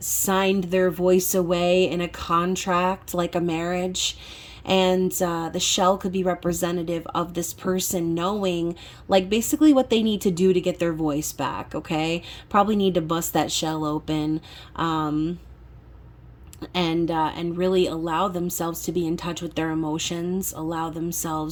signed their voice away in a contract, like a marriage. And the shell could be representative of this person knowing, like, basically what they need to do to get their voice back, okay? Probably need to bust that shell open. And really allow themselves to be in touch with their emotions, allow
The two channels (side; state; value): both; identical; correlation 1.00